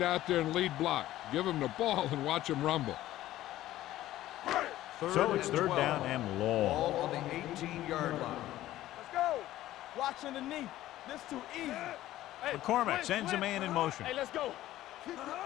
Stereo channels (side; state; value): right; quieter; 14.6 dB